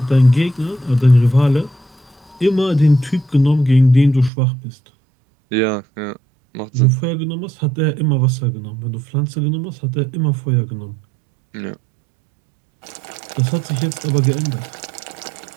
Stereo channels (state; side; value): drops out; left; at 4.3 s